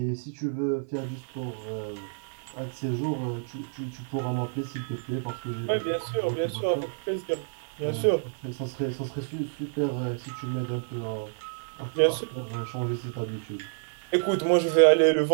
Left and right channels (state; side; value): silent; left; 59 dB below the other